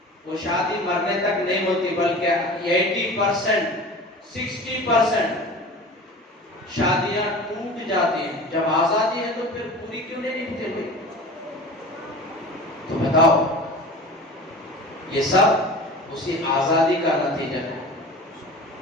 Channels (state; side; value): normal; both; correlation 0.37